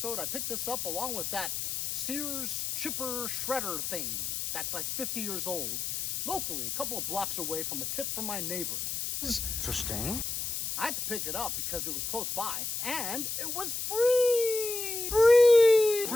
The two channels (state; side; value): noise; left; hiss, 3 dB below the sound